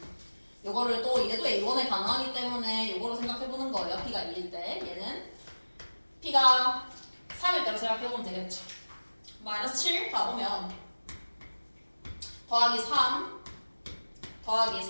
요거를 또 얘도 A1에 가능하기 때문에 요거로 생각해보는 거예요. P가 2일 때. 얘는 P가 3일 때로 생각해보면 되겠죠. 마이너스 7 가보면 더하기 3 더하기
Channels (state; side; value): inverted; both; correlation -1.00